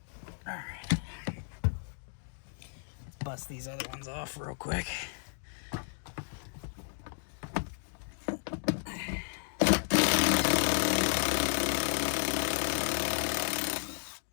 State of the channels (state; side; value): silent; right; digital silence